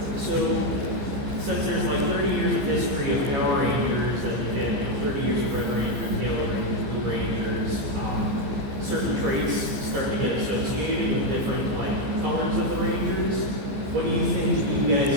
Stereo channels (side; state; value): left; late; 15 ms